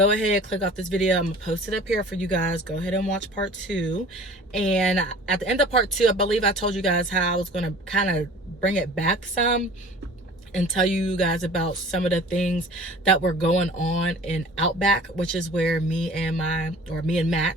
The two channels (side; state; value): both; normal; correlation 0.45